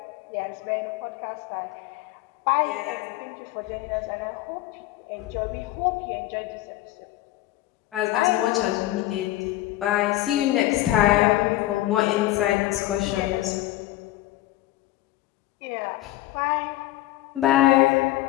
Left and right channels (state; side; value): quieter; right; 16.1 dB